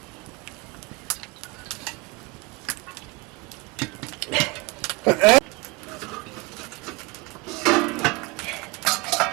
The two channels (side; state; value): left; quieter; 25.3 dB